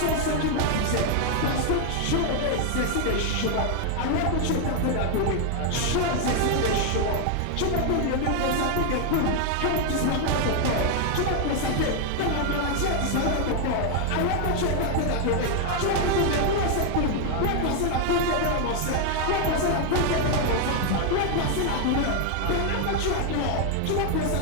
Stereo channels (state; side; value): different; both; correlation 0.00